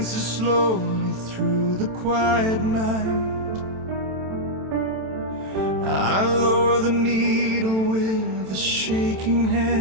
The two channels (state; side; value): late; left; 27 ms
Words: slowly through the quiet night. I lower the needle with a shaking